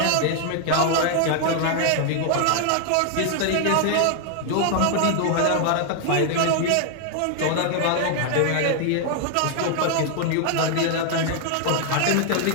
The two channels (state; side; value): different; both; correlation 0.00